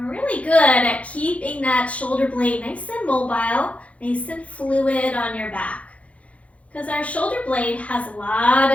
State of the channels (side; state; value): right; late; 0.065 ms